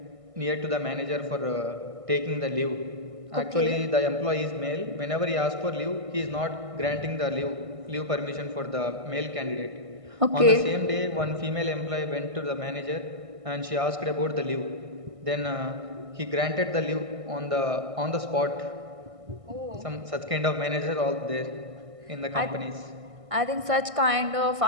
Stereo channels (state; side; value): late; left; 1.6 ms